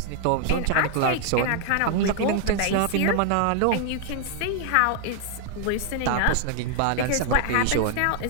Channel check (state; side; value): different; both; correlation 0.00